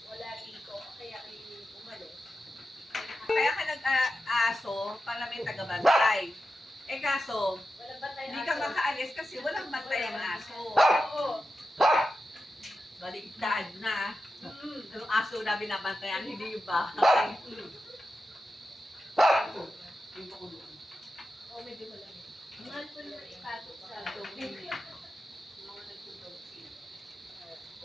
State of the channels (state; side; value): normal; both; correlation 0.91